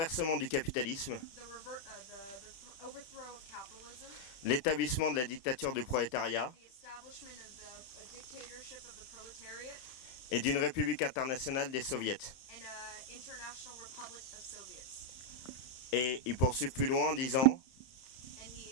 du capitalisme, the overthrow of capitalism, l'établissement de la dictature du prolétariat the establishment of the dictatorship of the proletariat, et d'une république internationale des soviets. and international republic of Soviets. Et il poursuit plus loin en disant And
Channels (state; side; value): late; right; 31 ms